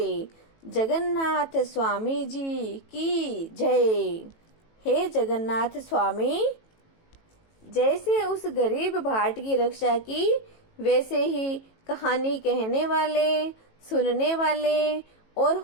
जगन्नाथ स्वामी जी की जय। हे जगन्नाथ स्वामी, जैसे उस गरीब भाट की रक्षा की, वैसे ही कहानी कहने वाले, सुनने वाले और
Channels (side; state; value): right; late; 18 ms